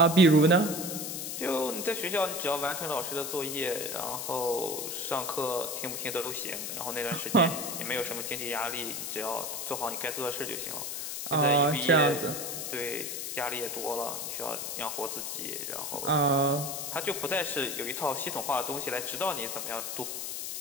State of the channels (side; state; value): left; noise; hiss, 4 dB below the sound